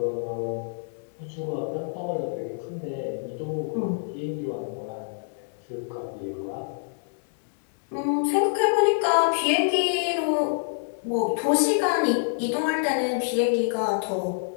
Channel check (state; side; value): silent; right; digital silence